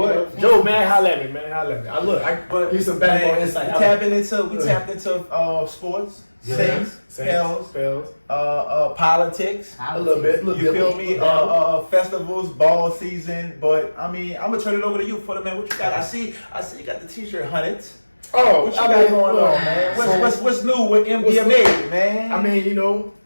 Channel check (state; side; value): inverted; both; correlation -1.00